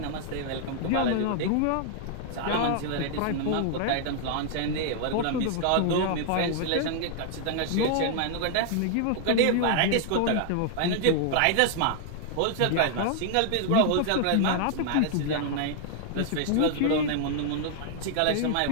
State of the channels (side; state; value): both; different; correlation -0.01